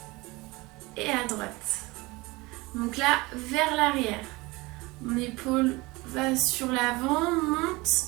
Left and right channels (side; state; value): left; quieter; 23.0 dB